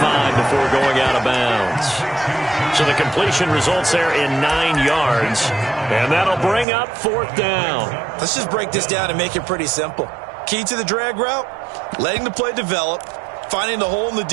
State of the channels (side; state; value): left; drops out; at 6.7 s